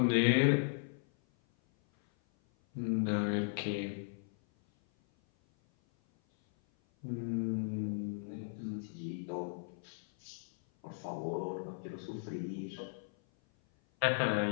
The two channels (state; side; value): silent; right; 54 dB below the other